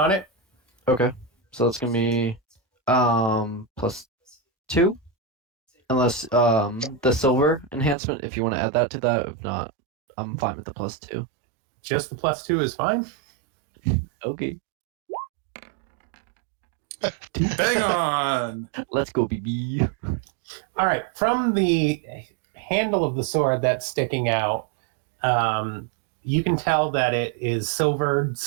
on it. Okay, so that's gonna be +2, unless the silver enhancement, if you want to add that to that. If not, I'm fine with the +2. Just the +2 is fine. Okay. Bang on. Let's go, BB. All right, from the handle of the sword that's sticking out, you can tell that it is silvered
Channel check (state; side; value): drops out; left; at 8.0 s